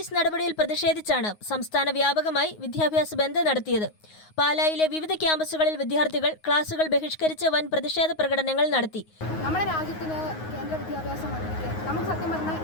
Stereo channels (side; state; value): right; late; 9.5 ms